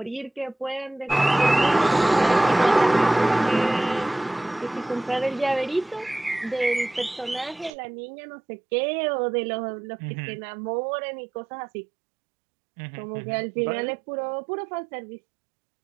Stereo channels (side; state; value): left; drops out; at 7.7 s